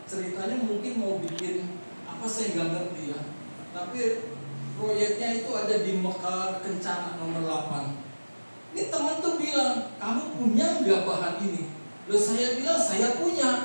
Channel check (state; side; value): inverted; both; correlation -1.00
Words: Ceritanya mungkin mau bikin apa saya nggak ngerti ya. Tapi proyeknya itu ada di Mekar Kencana nomor 8. Ini teman tuh bilang, kamu punya nggak bahan ini? Loh saya bilang saya